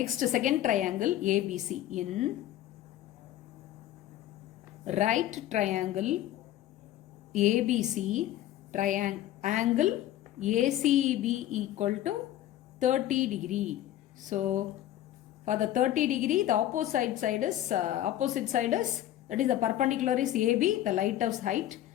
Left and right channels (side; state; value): right; quieter; 13.0 dB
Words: second triangle ABC. In right triangle ABC, angle ACB equal to 30 degree. So for the 30 degree, the opposite side is that is the perpendicular is AB, the lighthouse height,